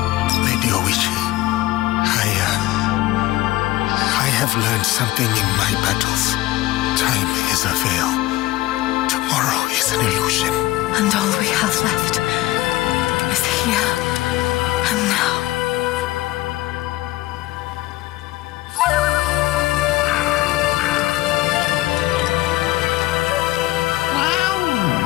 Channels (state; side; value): quieter; right; 17.7 dB